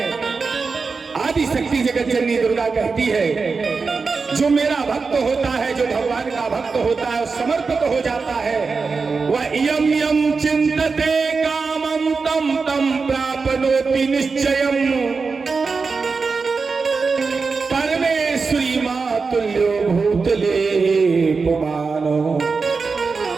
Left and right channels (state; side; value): quieter; left; 4.6 dB